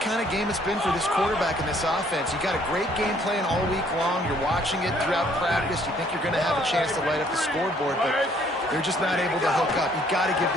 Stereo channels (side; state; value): both; normal; correlation 0.63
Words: kind of game it's been for this quarterback and this offense. You got a great game plan all week long. You're watching it throughout practice. You think you're going to have a chance to light up the scoreboard, but they're just not able to hook up. You got to give